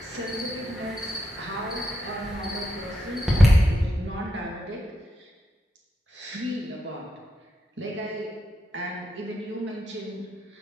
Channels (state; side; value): normal; both; correlation 0.84